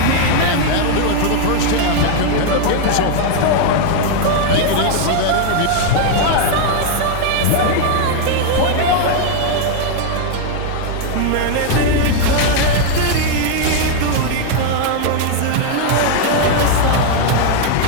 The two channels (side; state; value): both; different; correlation 0.00